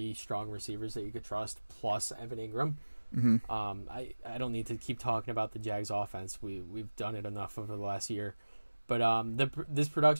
strong receivers that you could trust, plus Evan Ingram. Mm-hmm. I don't need to keep talking about the Jags offense. We've done it enough over the last year. But this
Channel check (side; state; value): both; inverted; correlation -1.00